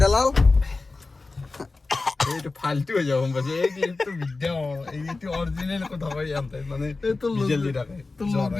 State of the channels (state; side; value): quieter; right; 3.6 dB